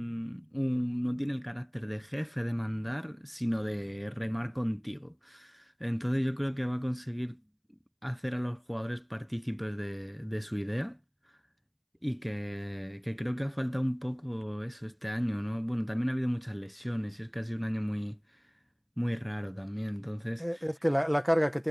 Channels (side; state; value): both; identical; correlation 1.00